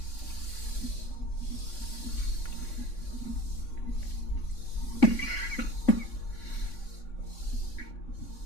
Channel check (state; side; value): late; right; 3.6 ms